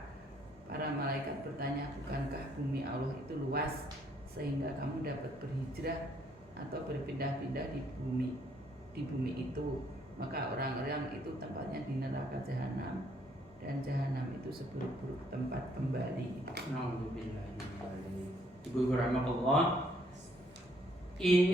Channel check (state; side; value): normal; both; correlation 0.67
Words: Para malaikat bertanya, bukankah bumi Allah itu luas sehingga kamu dapat berhijrah atau berpindah-pindah di bumi itu? Maka orang-orang itu tempatnya di neraka jahanam, dan jahanam itu seburuk-buruk tempat kembali. Ibu rahmatullah,